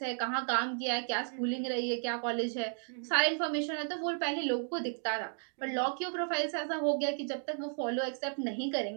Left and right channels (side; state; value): left; silent; 55 dB below the other